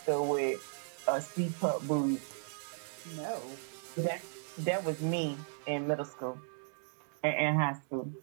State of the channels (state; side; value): silent; left; digital silence